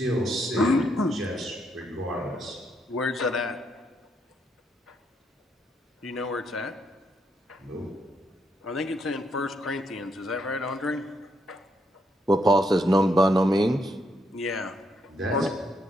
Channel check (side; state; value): both; normal; correlation 0.77